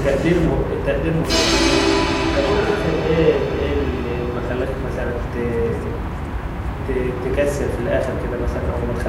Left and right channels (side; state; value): both; identical; correlation 1.00